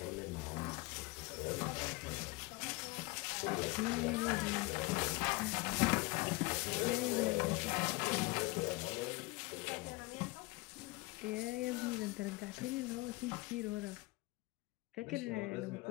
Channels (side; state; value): right; quieter; 22.9 dB